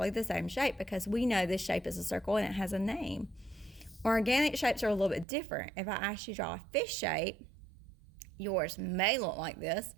the same shape because we know this shape is a circle and it has a name. Organic shapes are a little bit different. If I ask you to draw a fish shape, yours may look like this,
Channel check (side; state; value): left; drops out; at 5.2 s